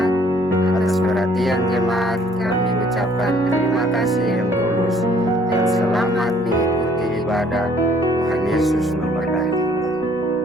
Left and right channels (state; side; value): noise; left; rumble, 30 dB below the sound